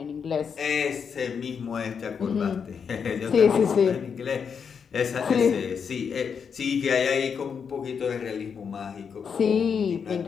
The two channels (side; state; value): right; quieter; 6.6 dB